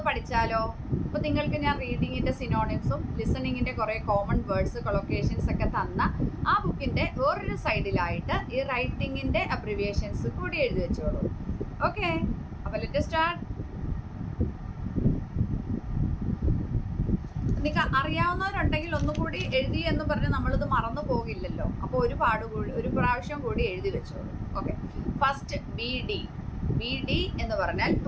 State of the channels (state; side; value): identical; both; correlation 1.00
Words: പഠിച്ചാലോ? അപ്പോൾ നിങ്ങൾക്ക് ഞാൻ റീഡിങ്ങിൻ്റെ സിനോണിംസും ലിസണിങ്ങിൻ്റെ കുറേ കോമൺ വേർഡ്സ് കൊളൊക്കേഷൻസ് ഒക്കെ തന്ന ആ ബുക്കിൻ്റെ വേറൊരു സൈഡിലായിട്ട് ഈ റൈറ്റിങ്ങിൻ്റെ അബ്രിവിയേഷൻസ് കൂടി എഴുതി വെച്ചോളൂ. ഓക്കെ, അപ്പോൾ ലെറ്റ് സ്റ്റാർട്ട്. നിങ്ങൾക്ക് അറിയാവുന്നവരുണ്ടെങ്കിൽ ഒന്നുകൂടി എഴുതി എന്ന് പറഞ്ഞ് നമ്മളിത് മറന്നു പോകില്ലല്ലോ. അപ്പോൾ ഒരു പ്രാവശ്യം കൂടി എഴുതി വെച്ചോളൂ. ഓക്കെ, ഫസ്റ്റ് BD എന്ന് പറഞ്ഞാൽ